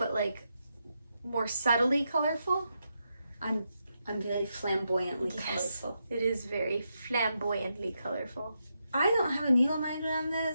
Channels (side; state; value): both; inverted; correlation -0.84